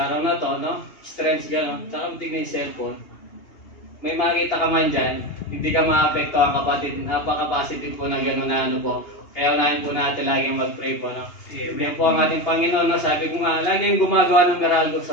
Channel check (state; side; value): late; right; 2.8 ms